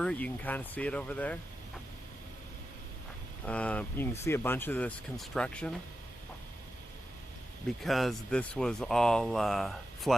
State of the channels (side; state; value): both; normal; correlation 0.90